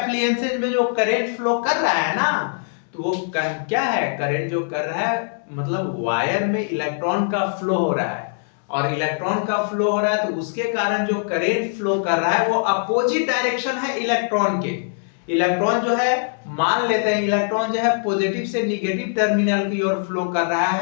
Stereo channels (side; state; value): right; silent; 64 dB below the other